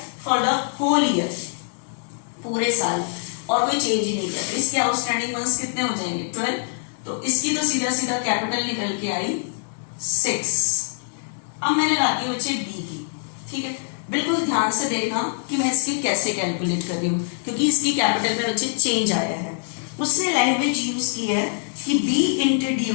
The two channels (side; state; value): right; silent; 63 dB below the other